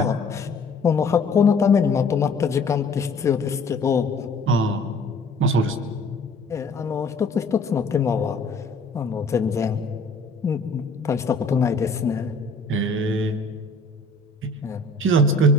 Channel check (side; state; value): right; quieter; 3.0 dB